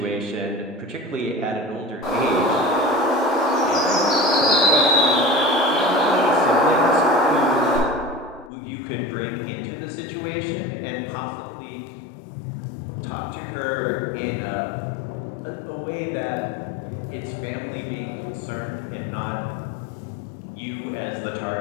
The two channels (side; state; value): right; drops out; at 8.5 s